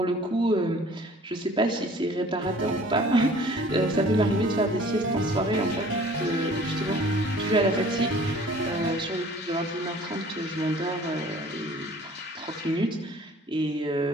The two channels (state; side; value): normal; both; correlation 0.50